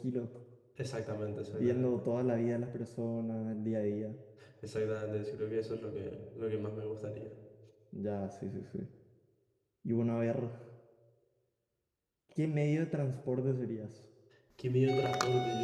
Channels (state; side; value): identical; both; correlation 1.00